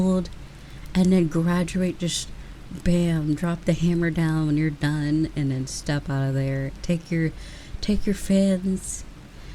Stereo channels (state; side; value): identical; both; correlation 1.00